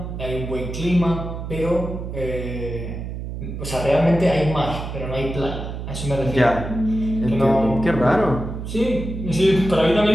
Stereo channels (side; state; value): right; noise; hum, 7 dB below the sound